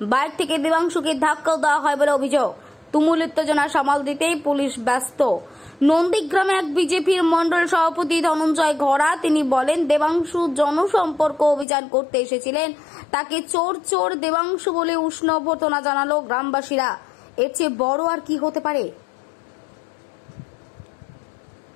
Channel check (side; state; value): right; drops out; at 11.7 s